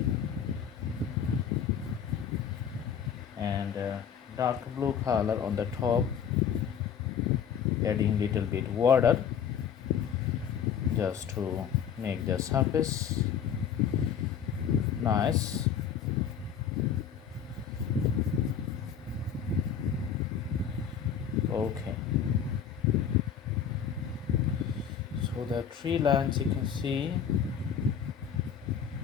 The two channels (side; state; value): right; quieter; 8.0 dB